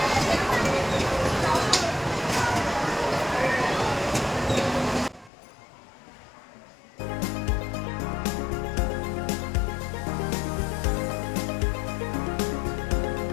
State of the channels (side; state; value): right; drops out; at 5.3 s